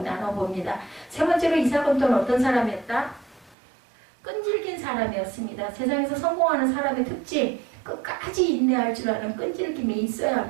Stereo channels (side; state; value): left; drops out; at 3.6 s